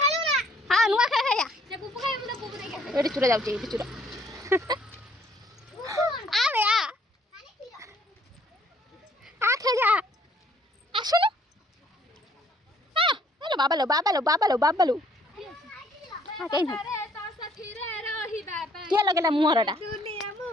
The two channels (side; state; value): both; normal; correlation 0.63